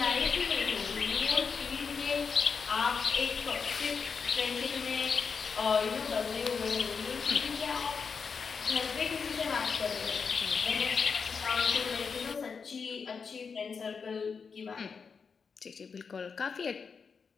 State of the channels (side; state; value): right; quieter; 5.6 dB